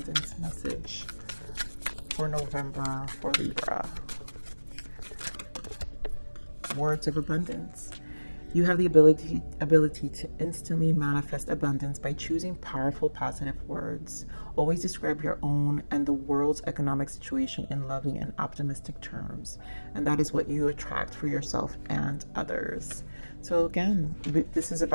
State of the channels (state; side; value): inverted; both; correlation -1.00